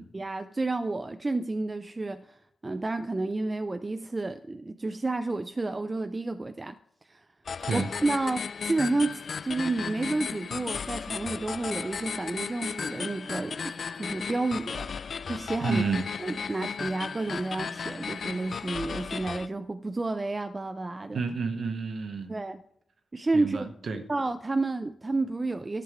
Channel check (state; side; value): normal; both; correlation 0.93